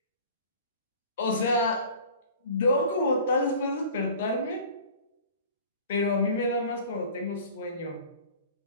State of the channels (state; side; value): inverted; both; correlation -0.44